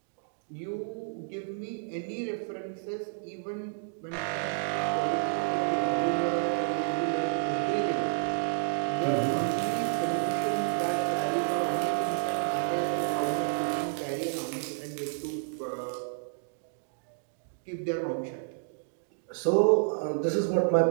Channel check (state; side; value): silent; left; digital silence